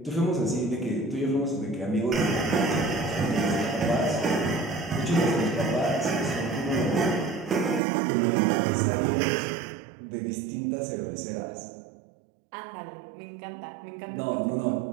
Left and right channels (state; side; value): drops out; left; at 7.8 s